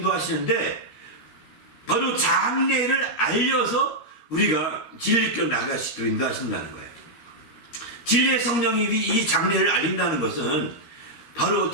바로 장래를 알려서 우리가 진리로 나갈 수 있도록 인도하신다는 거예요. 진리의 성령이 이 장래를 알린다는 것은 바로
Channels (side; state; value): right; late; 13 ms